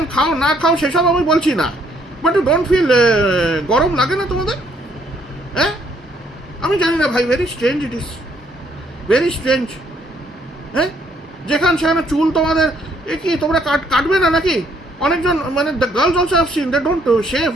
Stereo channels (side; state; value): both; normal; correlation 0.68